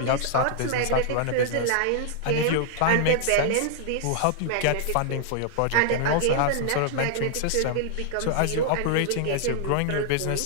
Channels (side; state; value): both; different; correlation 0.00